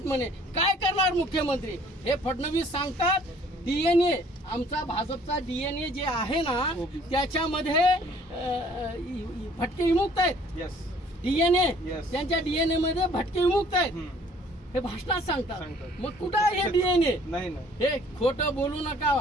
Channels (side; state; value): both; normal; correlation 0.57